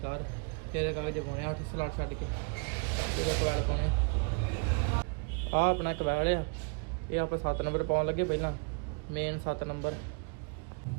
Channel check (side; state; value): left; quieter; 37.5 dB